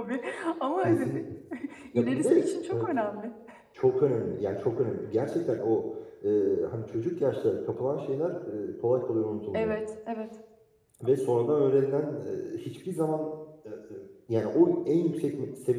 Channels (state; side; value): identical; both; correlation 1.00